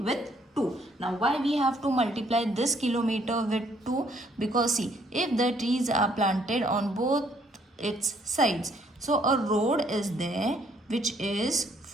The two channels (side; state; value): both; normal; correlation 0.66